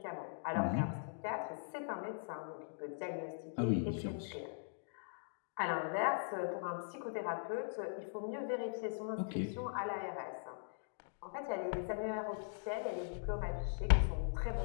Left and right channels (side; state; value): right; silent; digital silence